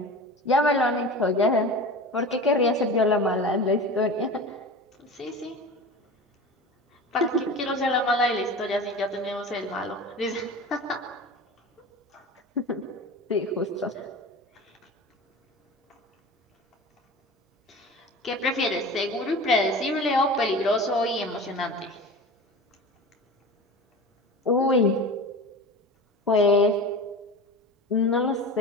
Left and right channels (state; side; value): normal; both; correlation 0.33